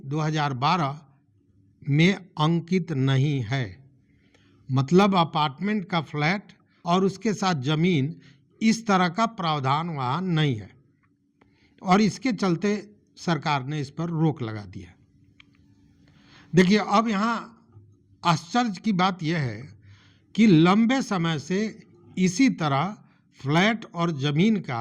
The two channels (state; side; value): identical; both; correlation 1.00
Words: 2012 में अंकित नहीं है। मतलब अपार्टमेंट का फ्लैट और उसके साथ ज़मीन, इस तरह का प्रावधान वहाँ नहीं है और इसके चलते सरकार ने इस पर रोक लगा दी है। देखिए, अब यहाँ आश्चर्य की बात यह है कि लंबे समय से इसी तरह फ्लैट और ज़मीन का